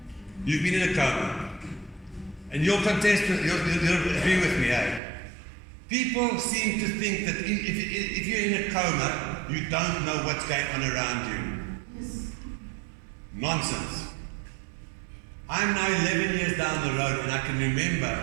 You've been in a coma. And you'll contest, you'll agree with me, eh? People seem to think that if you're in a coma, you don't know what's going on around you. Yes. Nonsense. I'm now 11 years down the road and I can remember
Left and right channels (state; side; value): drops out; left; at 5.0 s